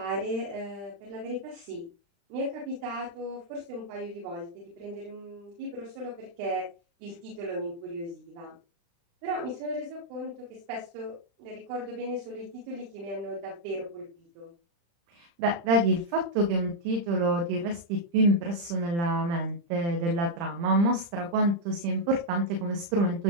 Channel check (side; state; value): left; late; 35 ms